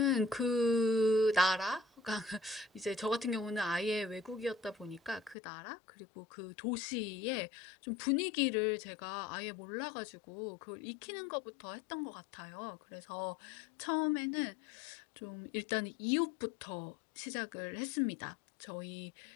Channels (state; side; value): drops out; right; at 5.4 s